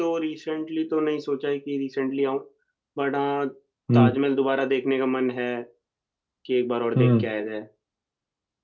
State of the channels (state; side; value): identical; both; correlation 1.00